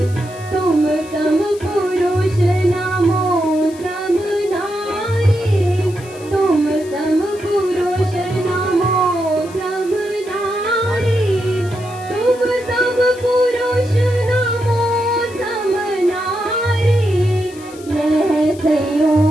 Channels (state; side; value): noise; left; hiss, 21 dB below the sound